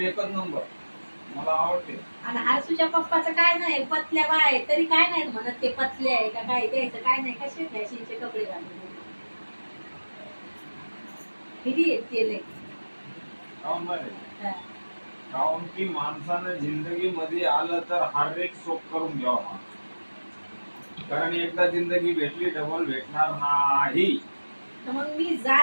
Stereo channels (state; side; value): inverted; both; correlation -1.00